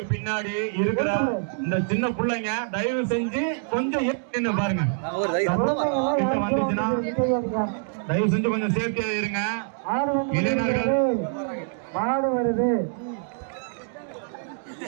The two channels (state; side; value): silent; left; digital silence